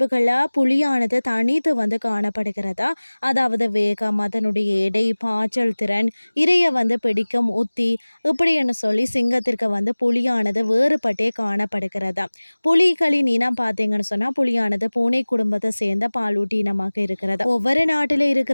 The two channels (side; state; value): both; inverted; correlation -1.00